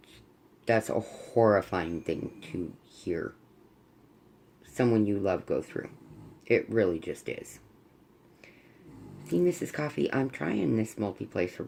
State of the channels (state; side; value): identical; both; correlation 1.00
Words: That's a horrifying thing to hear someone you love go through. It really just is. See, Mrs. Coffee, I'm trying this multi-placer